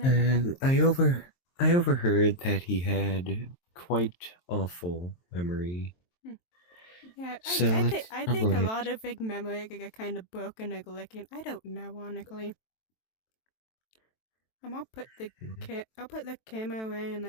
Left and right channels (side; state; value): right; late; 23 ms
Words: And I overheard that he had quite awful memory. Yeah, So that's I think a probably lot it. of big memory get kind of broken or glitching. I don't know, honestly. I'll put the I'll put the camera away and